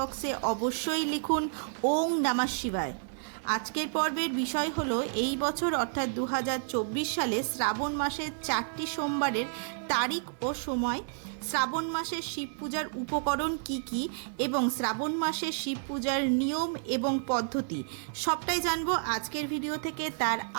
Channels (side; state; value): left; silent; digital silence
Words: অবশ্যই লিখুন ওং নমঃ শিবায়। আজকের পর্বের বিষয় হলো এই বছর অর্থাৎ 2024 সালে শ্রাবণ মাসের 4টি সোমবারের তারিখ ও সময়, শ্রাবণ মাসের শিব পূজার উপকরণ কি কি এবং শ্রাবণ মাসের শিব পূজার নিয়ম এবং পদ্ধতি সবটাই জানবো আজকের ভিডিও থেকে। তার